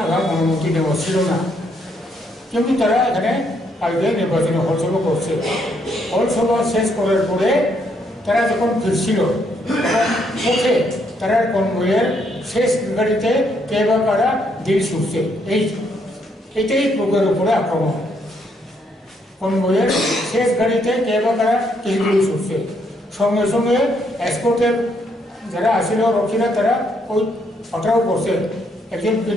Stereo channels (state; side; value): normal; both; correlation 0.73